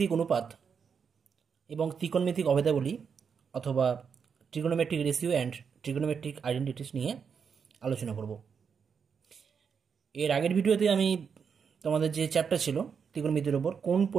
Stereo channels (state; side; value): quieter; left; 6.5 dB